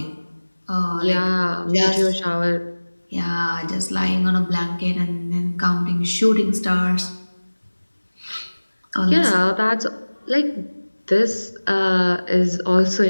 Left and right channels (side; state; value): both; inverted; correlation -1.00